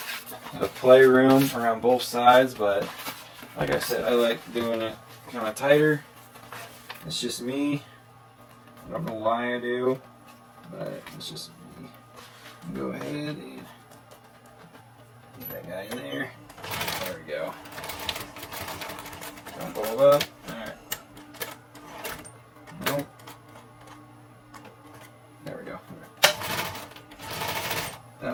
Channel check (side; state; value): both; identical; correlation 1.00